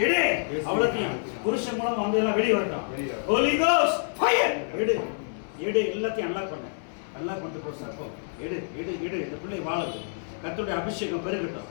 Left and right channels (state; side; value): silent; right; digital silence